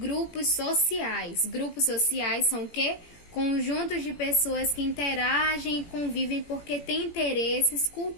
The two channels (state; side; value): late; right; 17 ms